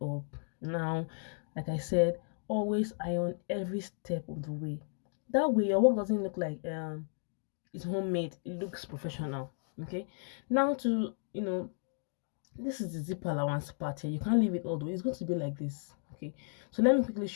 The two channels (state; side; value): silent; right; 55 dB below the other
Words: Now, like I said, always iron every step of the way. That way your work doesn't look like it's homemade, it looks professional. Okay, now to this is the zip allowance part here. You can't leave it all the way, it's going to be like this. Okay, so let me quickly